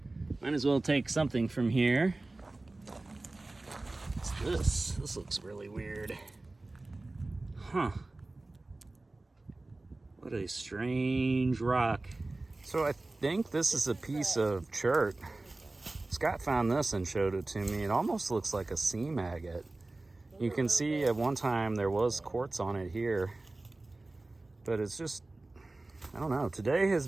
Might as well take something from here. What's this? This looks really weird. Huh. What a strange rock. So I think this is a piece of chert. Scott found this and showed it to me. It almost looks like a seam agate. You can see at one time there was quartz on it here, but it's just, I don't know. Today has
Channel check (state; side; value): quieter; left; 3.0 dB